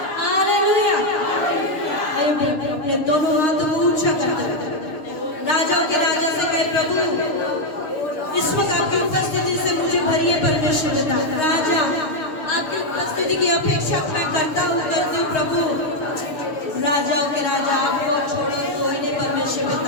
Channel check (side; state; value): right; late; 6.4 ms